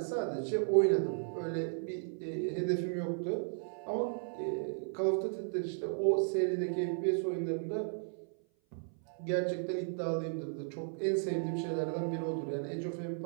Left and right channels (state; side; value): silent; left; 54 dB below the other